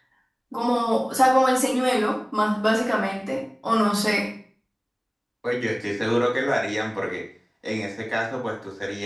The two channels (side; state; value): both; identical; correlation 1.00